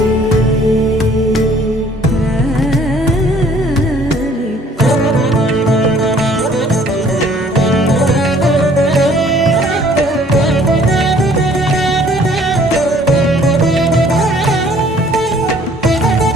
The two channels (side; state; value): both; normal; correlation 0.57